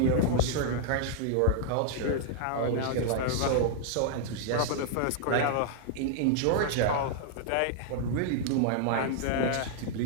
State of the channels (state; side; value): different; both; correlation -0.01